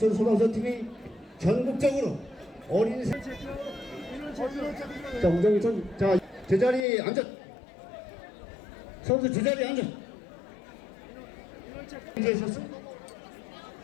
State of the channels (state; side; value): drops out; right; at 6.9 s